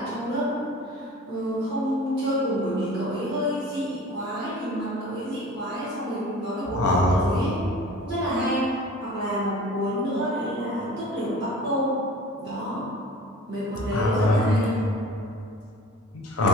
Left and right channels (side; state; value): both; normal; correlation 0.42